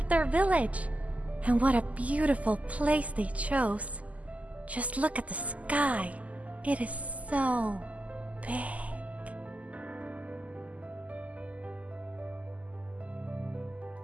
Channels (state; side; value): late; left; 0.072 ms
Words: their village. And what a beautiful place they chose. Just look at the sky. It is so big.